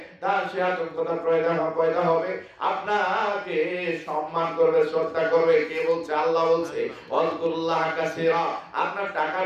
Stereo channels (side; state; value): both; identical; correlation 1.00